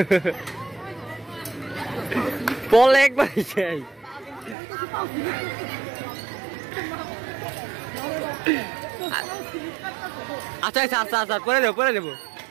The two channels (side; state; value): left; drops out; at 4.5 s